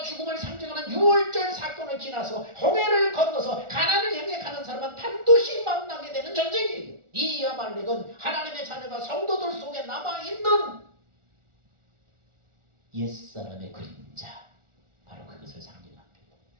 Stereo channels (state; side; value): late; left; 1.4 ms